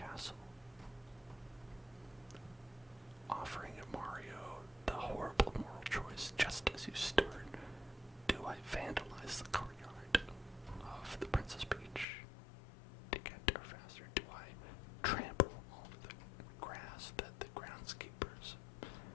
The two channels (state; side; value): drops out; right; at 12.1 s